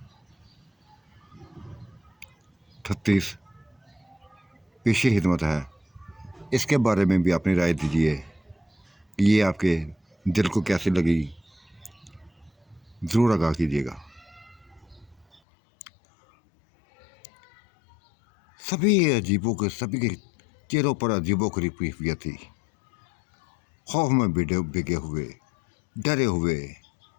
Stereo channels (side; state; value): right; drops out; at 15.4 s